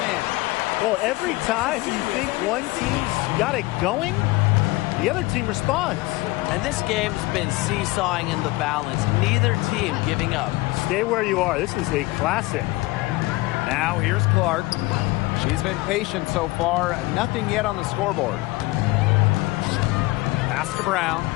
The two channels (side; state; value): right; quieter; 21.3 dB